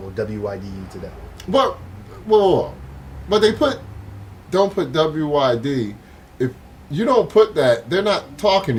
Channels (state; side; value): identical; both; correlation 1.00